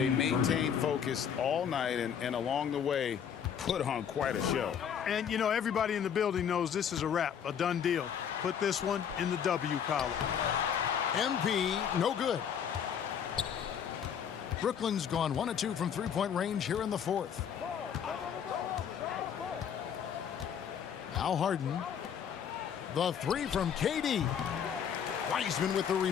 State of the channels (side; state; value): right; quieter; 8.1 dB